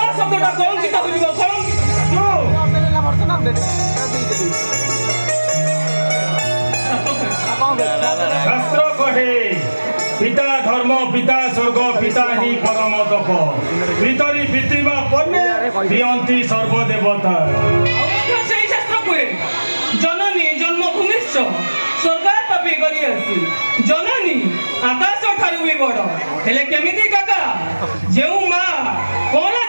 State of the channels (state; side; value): inverted; both; correlation -1.00